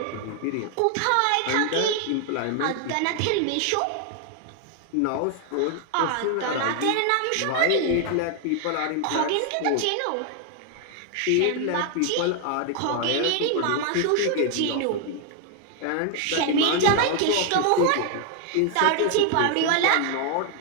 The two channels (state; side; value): different; both; correlation 0.00